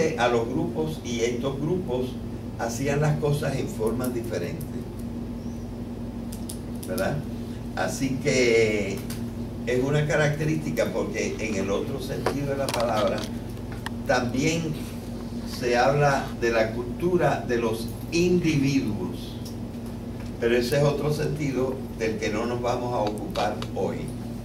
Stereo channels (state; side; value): identical; both; correlation 1.00